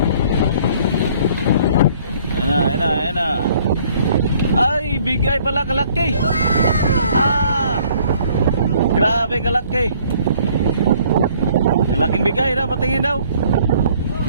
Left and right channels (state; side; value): inverted; both; correlation -0.59